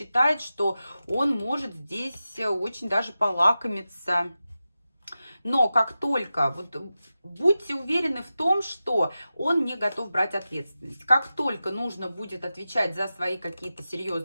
что он может здесь очень даже полакомиться. Но как только, вот будьте уверены в том, что он не готов брать ответственность. Как только нужно будет отвечать за свои какие-то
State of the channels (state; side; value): inverted; both; correlation -0.93